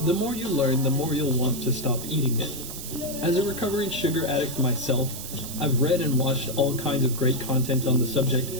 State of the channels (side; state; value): right; noise; hiss, 9 dB below the sound